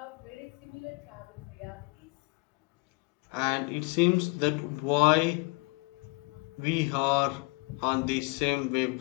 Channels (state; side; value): quieter; right; 29.6 dB